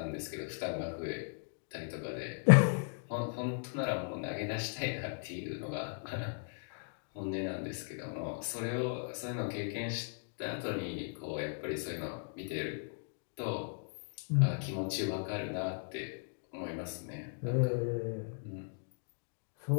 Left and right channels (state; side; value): silent; right; digital silence